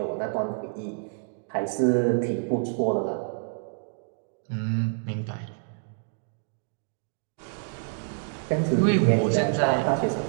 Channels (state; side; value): silent; left; digital silence